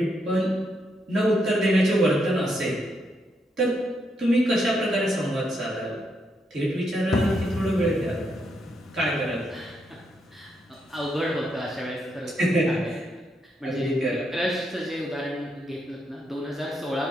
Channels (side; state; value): both; normal; correlation 0.79